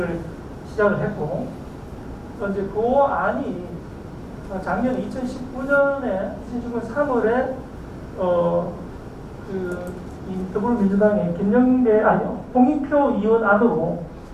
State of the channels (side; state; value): both; identical; correlation 1.00